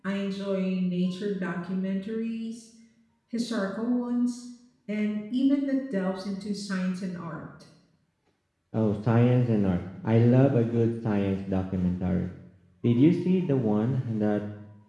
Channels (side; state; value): both; identical; correlation 1.00